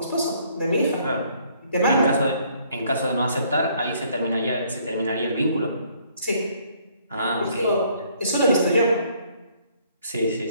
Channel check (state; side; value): inverted; both; correlation -0.64